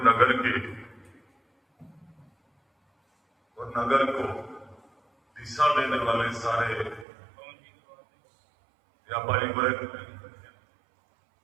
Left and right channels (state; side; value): drops out; left; at 7.1 s